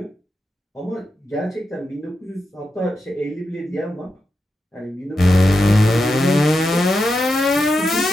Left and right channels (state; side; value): normal; both; correlation 0.88